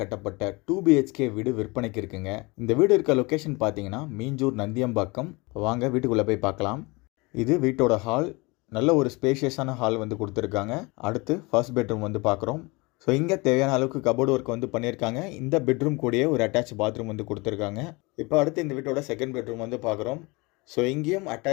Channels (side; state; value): right; quieter; 25.9 dB